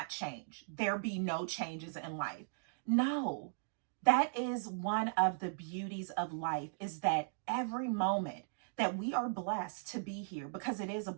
change? There be no changes in life? No. That is one of the beauties of life, is that every moment that we are blessed to be here, because it is a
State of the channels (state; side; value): silent; left; digital silence